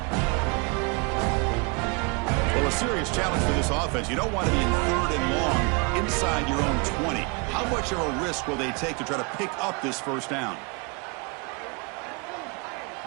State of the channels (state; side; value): quieter; left; 31.4 dB